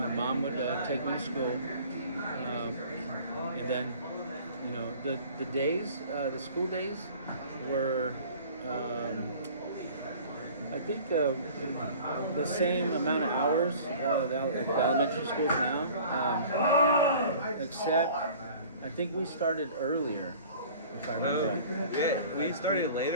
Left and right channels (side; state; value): both; inverted; correlation -0.46